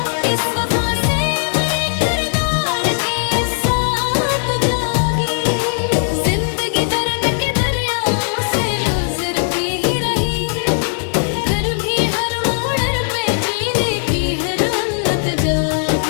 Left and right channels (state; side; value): silent; right; digital silence